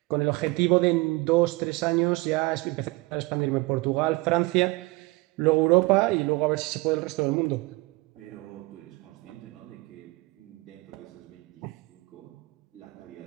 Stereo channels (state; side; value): quieter; left; 23.3 dB